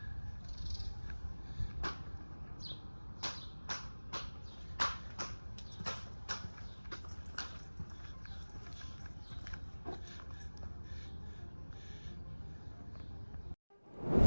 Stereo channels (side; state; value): both; inverted; correlation -1.00